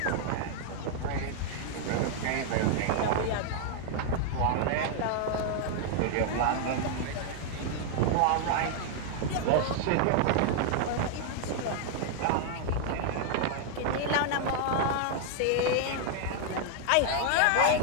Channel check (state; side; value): different; both; correlation 0.00